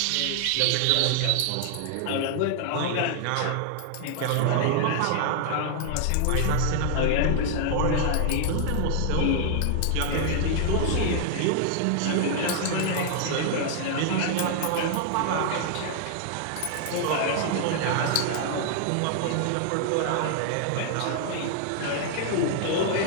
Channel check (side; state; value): both; different; correlation 0.00